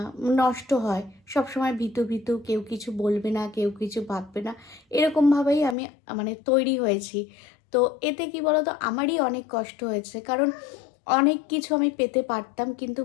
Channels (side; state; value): right; drops out; at 5.8 s